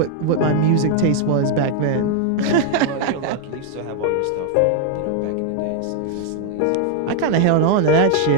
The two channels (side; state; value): both; different; correlation 0.00